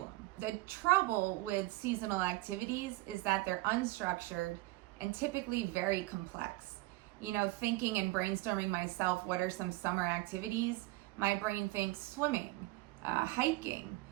The trouble with seasonal activities is that they're unstructured and typically very complex. Thinking and brainstorming myself, what are some summer activities? My brain thinks swimming, hiking,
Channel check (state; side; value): quieter; left; 20.0 dB